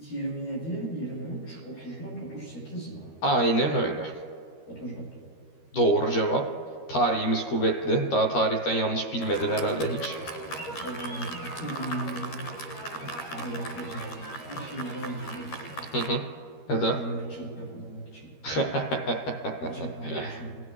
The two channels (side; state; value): right; late; 13 ms